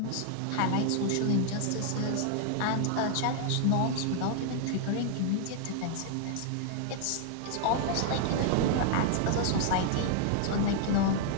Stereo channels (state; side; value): different; both; correlation 0.00